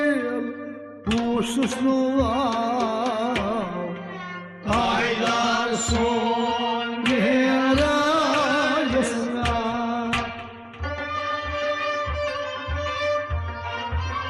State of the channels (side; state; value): both; identical; correlation 1.00